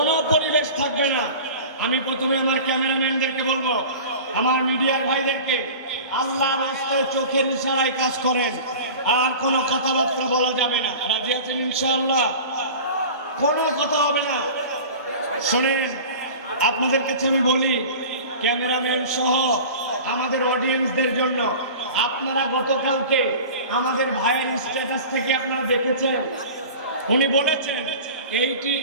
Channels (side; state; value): both; inverted; correlation -0.37